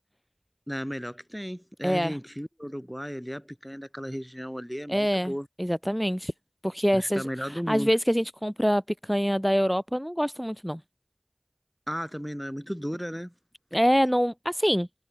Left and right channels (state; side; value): identical; both; correlation 1.00